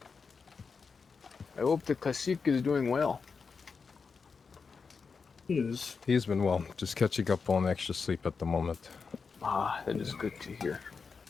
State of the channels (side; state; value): right; quieter; 5.2 dB